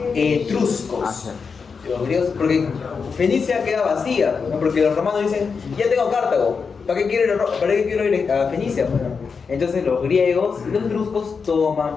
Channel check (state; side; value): quieter; right; 5.5 dB